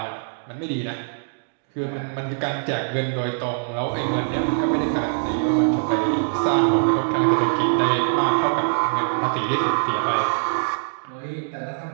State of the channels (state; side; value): silent; left; digital silence